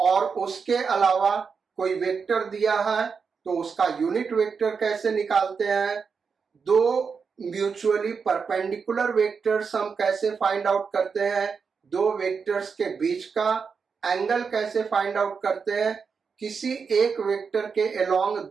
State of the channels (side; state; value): left; quieter; 5.6 dB